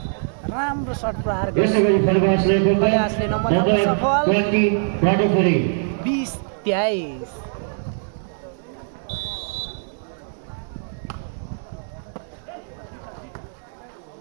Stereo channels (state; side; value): silent; left; 64 dB below the other